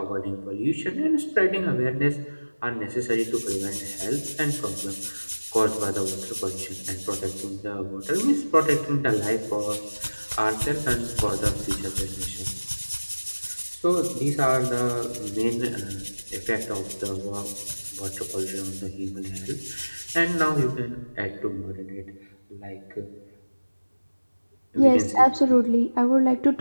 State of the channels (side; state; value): both; inverted; correlation -1.00